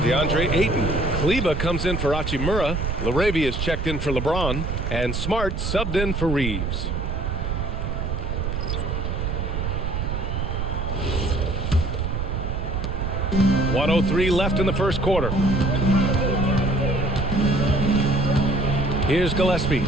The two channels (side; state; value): right; noise; rumble, 2 dB below the sound